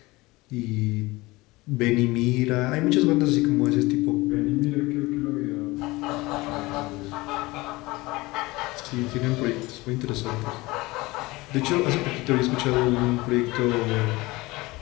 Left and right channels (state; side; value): quieter; right; 21.4 dB